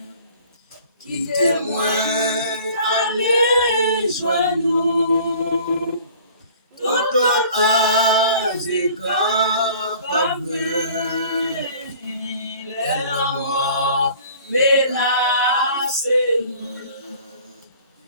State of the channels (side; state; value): both; inverted; correlation -0.49